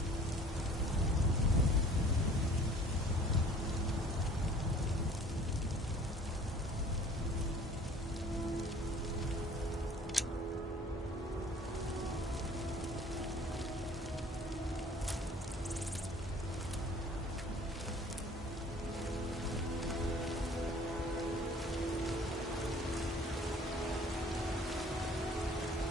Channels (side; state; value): both; normal; correlation 0.51